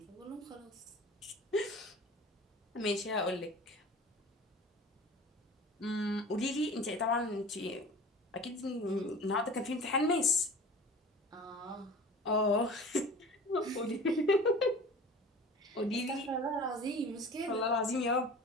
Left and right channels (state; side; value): normal; both; correlation 0.40